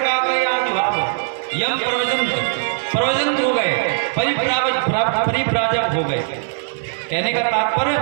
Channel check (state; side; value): silent; left; 57 dB below the other